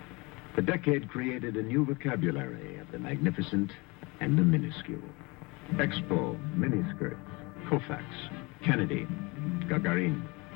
The decade created a new vocabulary of the magnificent and the minuscule. Expo, miniskirts, Koufax, Kennedy, Gagarin,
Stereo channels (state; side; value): quieter; right; 26.6 dB